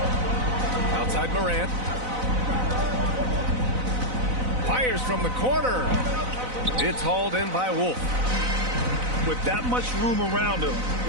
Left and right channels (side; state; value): left; late; 4.0 ms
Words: Outside Morant. Fires from the corner. It's hauled in by Wolf. With that much room around him,